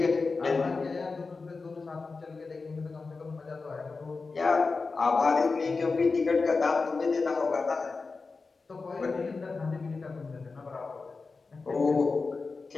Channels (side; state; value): right; quieter; 4.2 dB